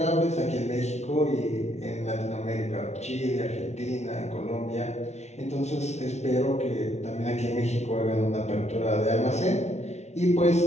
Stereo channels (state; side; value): late; right; 0.32 ms